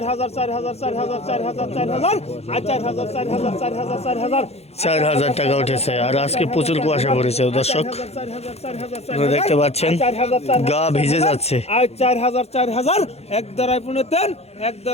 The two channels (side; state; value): right; late; 0.30 ms